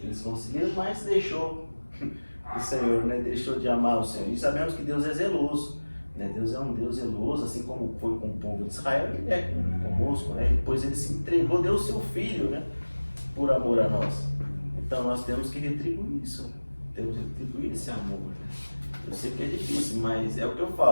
eles conseguiram, mas deixou o Senhor, né? Deixou de amar o Senhor. E sabemos que Deus é zeloso, né? Deus é um Deus zeloso, assim como foi com o povo de Israel, Ele é conosco, né? Depois Ele se entregou, deu o seu Filho, né? Por amor a nós. Então nós temos que retribuir isso, temos que retribuir esse amor. Eu sei que é difícil, mas é o que eu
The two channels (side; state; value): both; inverted; correlation -1.00